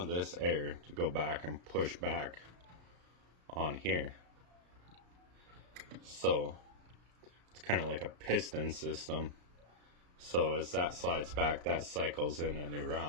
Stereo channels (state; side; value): late; left; 34 ms